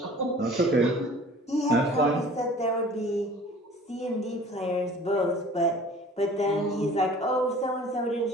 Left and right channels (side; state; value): both; normal; correlation 0.47